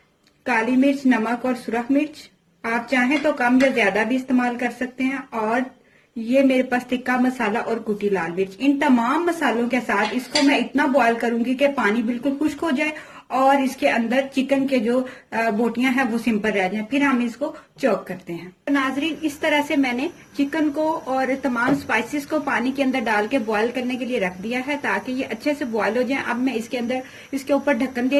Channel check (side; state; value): both; identical; correlation 1.00